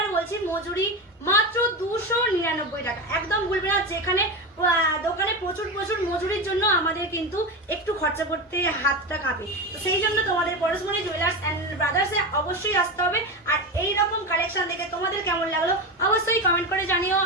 বলছি মজুরি মাত্র 299 টাকা, একদম ভুলবে না। যেখানে দোকানে প্রচুর প্রচুর মজুরির জন্য আমাদের কিন্তু একটু খরচা করতে হাতটা কাঁপে, তো সেই জন্য তোমাদের পরশমণি জুয়েলার্স এন্ড ব্রাদার্সে অবশ্যই আসতে হবে। আর এই রকম কালেকশন দেখে তোমাদের কেমন লাগলো অবশ্যই কমেন্ট করে জানিও।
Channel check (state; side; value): normal; both; correlation 0.20